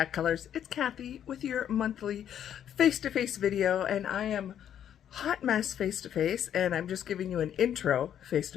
Colors. It's Kathy with your monthly face-to-face video, and I am hot mess face-to-face, and I'm just giving you an intro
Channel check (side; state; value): right; quieter; 9.8 dB